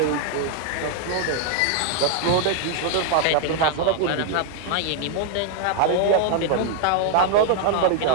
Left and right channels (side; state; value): both; different; correlation 0.00